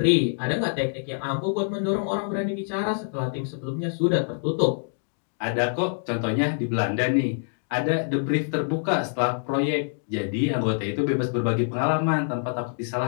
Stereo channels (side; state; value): right; silent; digital silence